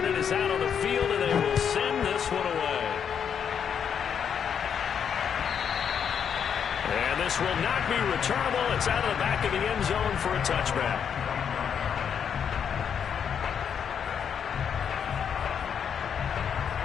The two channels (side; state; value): right; quieter; 7.7 dB